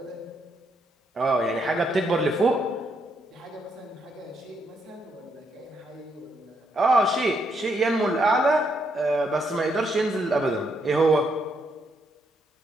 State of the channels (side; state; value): both; normal; correlation 0.76